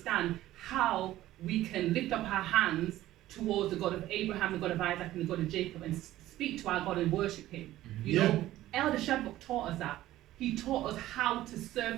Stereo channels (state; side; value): quieter; left; 14.9 dB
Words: how we can lift up our hands towards the God of Abraham, the God of Isaac, and the God of Jacob, and speak to our God and worship him. You Yeah. know, Elder Shadrach taught us that. He taught us how to